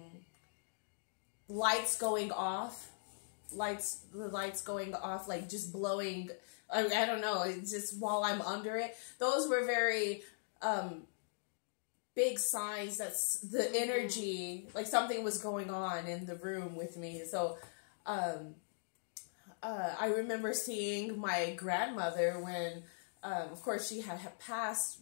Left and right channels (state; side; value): silent; right; digital silence